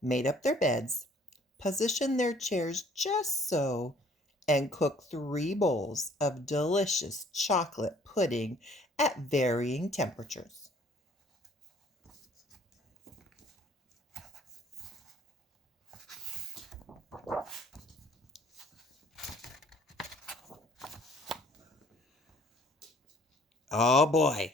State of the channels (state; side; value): normal; both; correlation 0.57